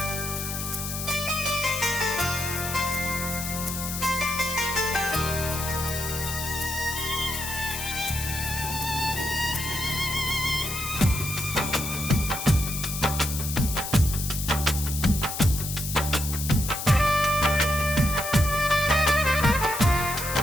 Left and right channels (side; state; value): left; noise; hiss, 5 dB below the sound